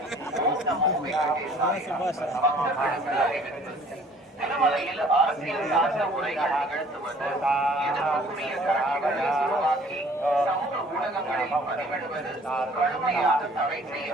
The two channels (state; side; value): normal; both; correlation 0.54